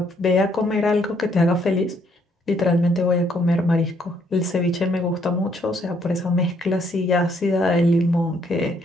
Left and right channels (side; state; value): both; normal; correlation 0.69